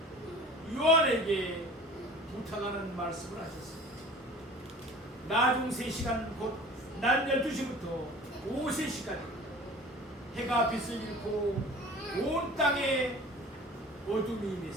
요한에게 부탁하는 말씀을 하셨습니다. 나중 3시간 곧 낮 12시부터 오후 3시까지 해가 빛을 잃고 온 땅에 어둠이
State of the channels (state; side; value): normal; both; correlation 0.43